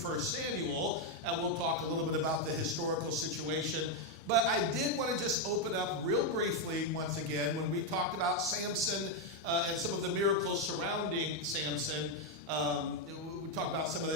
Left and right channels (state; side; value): normal; both; correlation 0.03